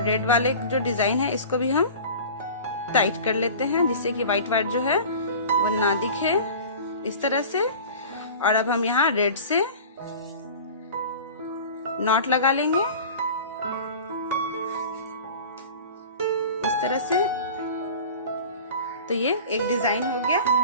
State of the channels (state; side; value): inverted; both; correlation -0.39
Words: रेड वाले जो डिजाइन है इसको भी हम टाइट कर लेते हैं, जिससे कि व्हाइट वाइट जो है वो ना दिखे, इस तरह से। और अब हम यहाँ रेड से नॉट लगा लेंगे इस तरह से। तो ये एक डिजाइन हो